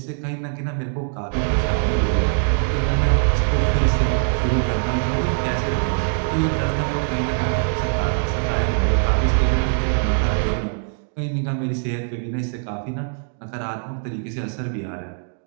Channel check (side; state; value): left; silent; digital silence